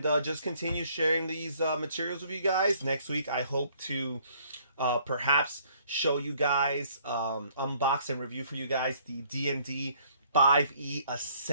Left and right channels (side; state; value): both; inverted; correlation -0.61